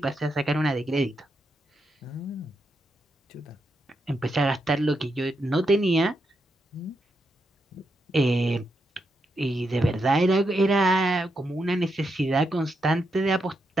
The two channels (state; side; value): normal; both; correlation 0.83